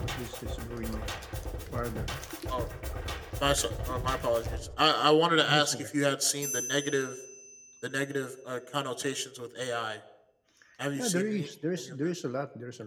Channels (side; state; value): both; identical; correlation 1.00